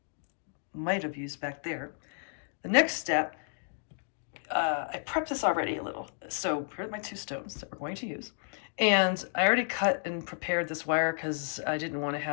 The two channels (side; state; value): right; silent; digital silence